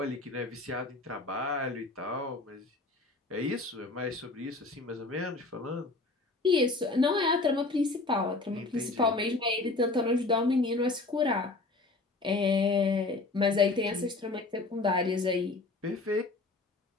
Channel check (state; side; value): quieter; right; 3.4 dB